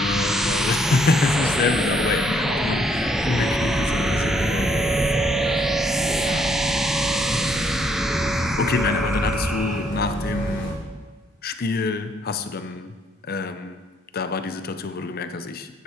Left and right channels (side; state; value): both; normal; correlation 0.69